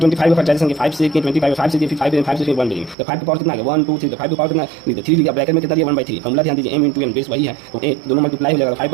का फैक्टराइजेशन के 5 से किए, 25 5 से किए, फिर 5 से फिर 1 बेरी। तो 5 के पावर कितना आ गया 1 2 3, तो 5 के पावर कितना नहीं, तो 3 लिखा, ब्रैकेट में कितना दिया 1/3। फार्मूला ध्यान दीजिए m इंटू n बेस वही है, तो a दोनों मल्टीप्लाई हो जाएगा,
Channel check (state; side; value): drops out; left; at 3.0 s